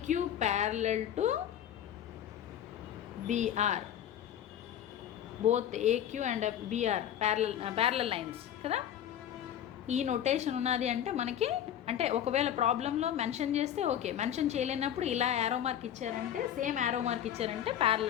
parallel to BR, both AQ and BR parallel lines కదా. ఈ నొటేషన్ ఉన్నది అంటే మనకి, అంటే ఒకవేళ ప్రాబ్లంలో మెన్షన్ చేస్తే okay, mention చేయలేనప్పుడు ఇలా యారో మార్క్ ఇచ్చారంటే, సేమ్ యారో మార్క్ ఇచ్చారంటే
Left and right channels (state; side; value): quieter; right; 10.5 dB